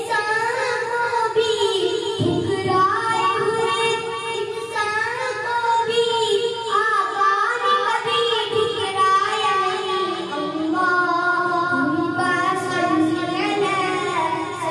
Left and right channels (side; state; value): both; identical; correlation 1.00